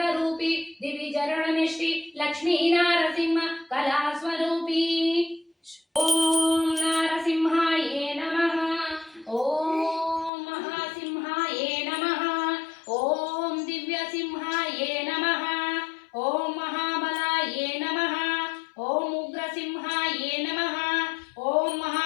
ರೂಪಿ ದಿವಿಜರಣನೆ ಶ್ರೀ ಲಕ್ಷ್ಮೀ ನಾರಸಿಂಹ ಕಲಾ ಸ್ವರೂಪಿ ಓಂ ನಾರಸಿಂಹಾಯೇ ನಮಃ ಓಂ ಮಹಾಸಿಂಹಾಯೇ ನಮಃ ಓಂ ದಿವ್ಯಸಿಂಹಾಯೇ ನಮಃ ಓಂ ಮಹಾಬಲಾಯೇ ನಮಃ ಓಂ ಉಗ್ರಸಿಂಹಾಯೇ ನಮಃ ಓಂ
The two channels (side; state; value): right; drops out; at 10.3 s